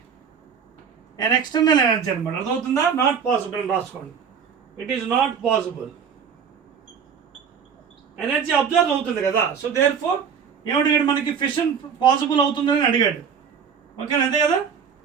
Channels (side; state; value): left; quieter; 6.9 dB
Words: and external energy అనమాట. అర్థమవుతుందా, నాట్ పాసిబుల్ అని రాసుకోండి. It is not possible, energy observe అవుతుంది కదా. సో దేర్ ఫోర్ ఏమడిగాడు మనకి, ఫిషన్ పాసిబుల్ అవుతుందని అడిగాడు. ఓకేనా, అంతే కదా,